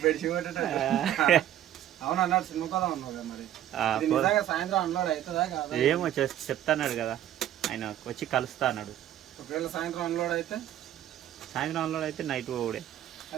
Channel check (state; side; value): quieter; left; 11.9 dB